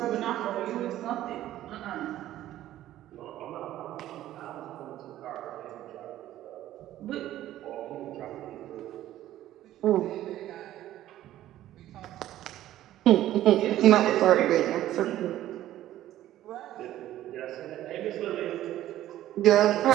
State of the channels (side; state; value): left; quieter; 13.5 dB